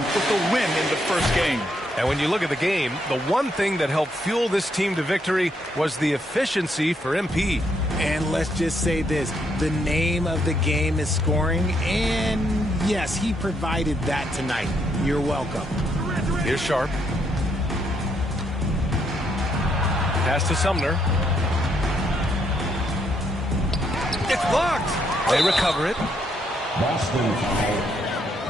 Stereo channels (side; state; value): both; normal; correlation 0.75